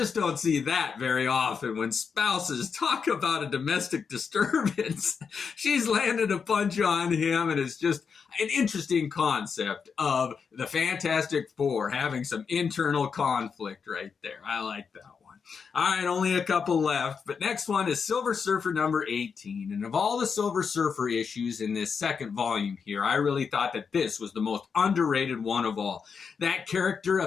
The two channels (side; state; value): right; quieter; 6.0 dB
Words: don't see that very often when spouses talk about a domestic disturbance. She's landed a punch on him, and it's just an interesting concept of the Fantastic Four having some internal conflict right there. I like that one. All right, only a couple left. But next one is Silver Surfer number 18. And of all the Silver Surfer issues in this second volume here, I really thought that this was the most underrated one of all. That character